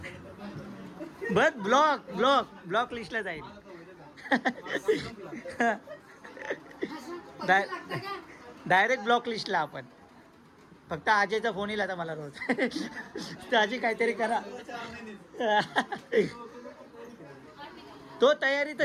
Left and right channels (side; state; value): both; identical; correlation 1.00